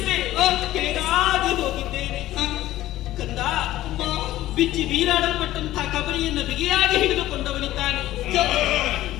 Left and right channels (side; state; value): right; quieter; 14.9 dB